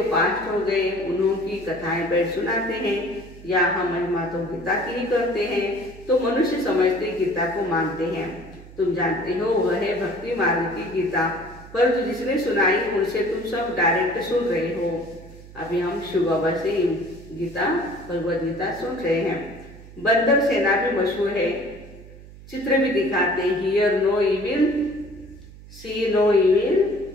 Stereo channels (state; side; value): noise; right; hum, 18 dB below the sound